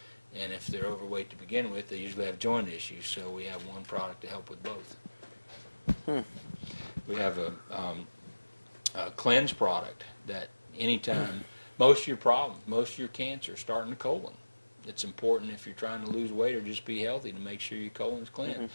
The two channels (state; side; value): inverted; both; correlation -1.00